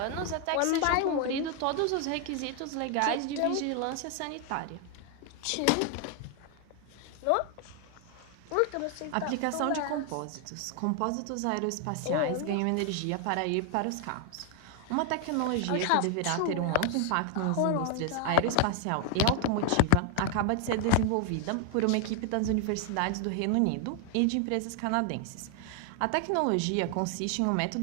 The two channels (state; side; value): different; both; correlation 0.00